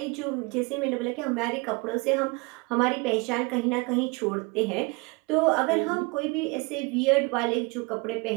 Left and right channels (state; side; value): quieter; left; 27.9 dB